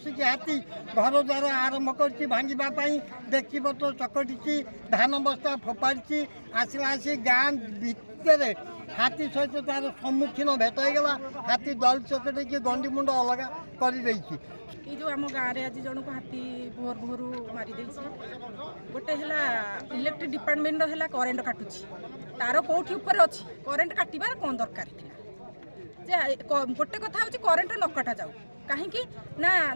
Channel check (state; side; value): inverted; both; correlation -1.00